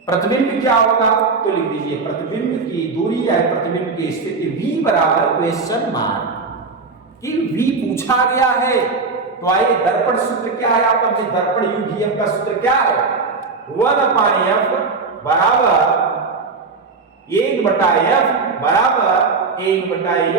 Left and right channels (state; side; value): quieter; left; 4.3 dB